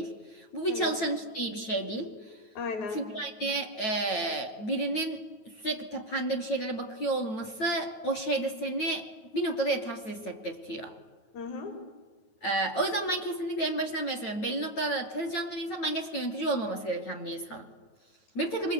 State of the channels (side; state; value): right; late; 9.3 ms